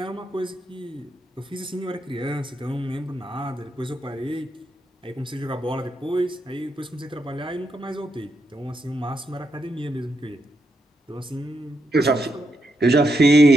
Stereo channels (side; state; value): both; normal; correlation 0.82